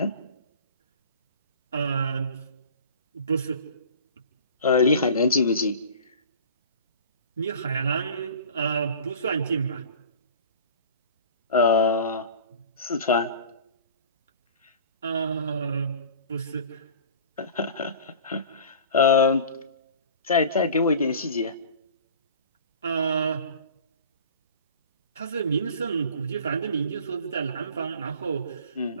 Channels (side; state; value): both; inverted; correlation -0.40